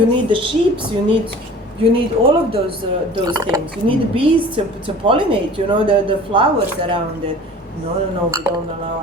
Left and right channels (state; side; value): normal; both; correlation 0.44